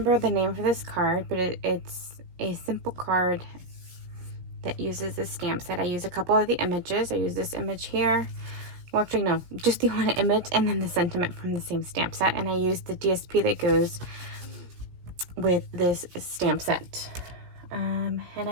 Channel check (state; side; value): late; left; 17 ms